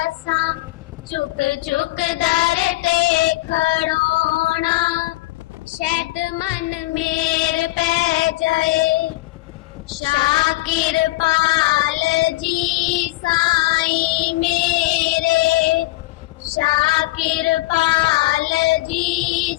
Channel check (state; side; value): quieter; right; 19.1 dB